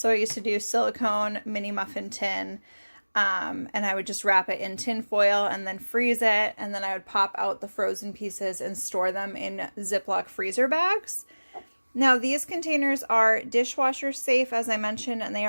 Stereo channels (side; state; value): both; inverted; correlation -1.00